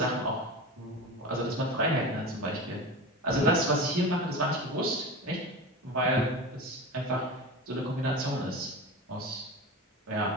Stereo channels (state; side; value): normal; both; correlation 0.28